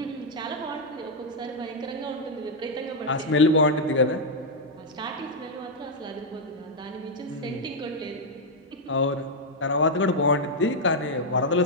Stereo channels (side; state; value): both; normal; correlation -0.02